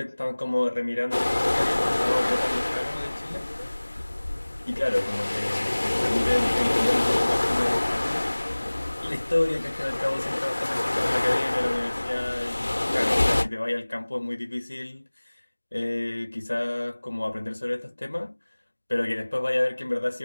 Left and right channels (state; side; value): inverted; both; correlation -1.00